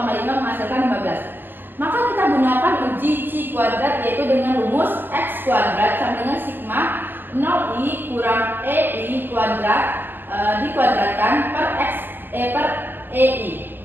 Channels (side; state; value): left; late; 0.097 ms